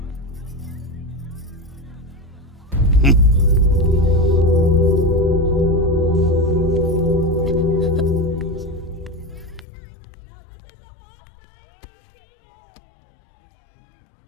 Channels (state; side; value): drops out; right; at 9.7 s